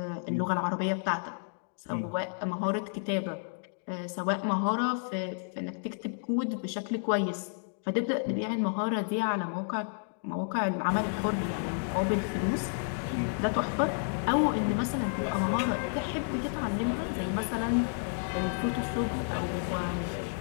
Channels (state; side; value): silent; right; digital silence